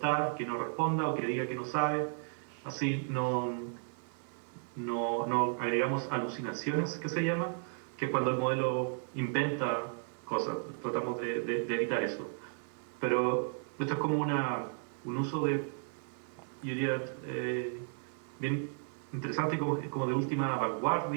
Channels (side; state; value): left; silent; 55 dB below the other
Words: que no responda o que diga que no sabe. Así no agregamos alucinaciones, que se llama, que es cuando el modelo inventa cosas. Tratamos de evitar eso. Pero esto es como un uso de, yo diría, bien interesante y como de última